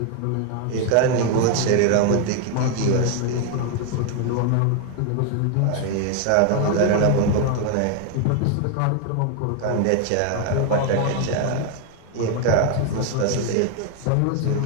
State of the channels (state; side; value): different; both; correlation 0.01